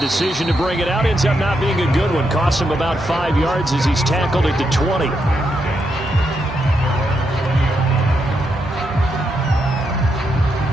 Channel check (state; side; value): normal; both; correlation 0.81